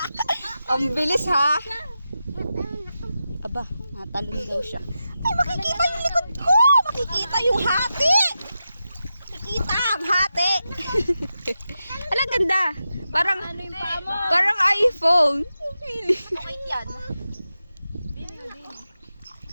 Ang bilis ha. Aba, Natalon daw siya. Ay, makikita yung likod ko! Makikita yung hati! Makikita ang hati! Alam, ganda. Parang, parang iPhone. Okay yan.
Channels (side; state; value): both; inverted; correlation -0.90